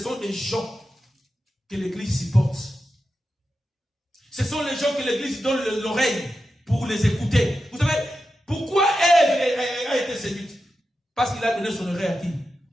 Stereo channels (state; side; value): normal; both; correlation 0.90